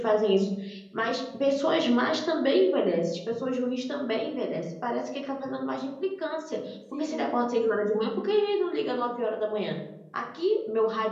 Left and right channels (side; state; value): both; identical; correlation 1.00